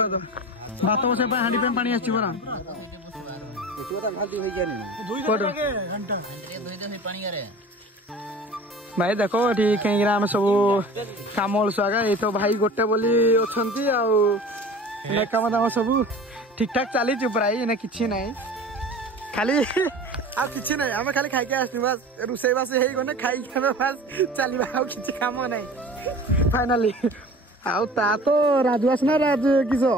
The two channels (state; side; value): normal; both; correlation 0.40